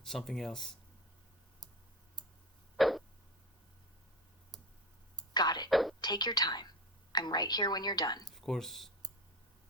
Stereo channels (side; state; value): both; normal; correlation 0.25